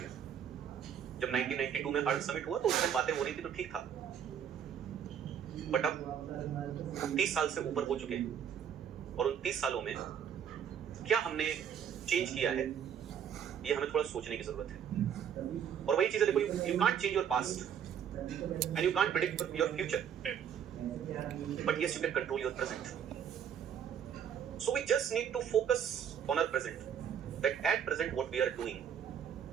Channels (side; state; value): left; quieter; 8.5 dB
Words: गया. जब 1992 में अर्थ समिट हुआ तो उसमें बातें हो रही थी तो ठीक था, बट अब 30 साल से ऊपर हो चुके हैं और उन 30 सालों में क्या हमने चेंज किया है, ये हमें थोड़ा सोचने की जरूरत है. और वही चीजें देखो, you can't change your past and you can't predict your future, but yes you can control your present. So we just need to focus on our present, that at present what we are doing.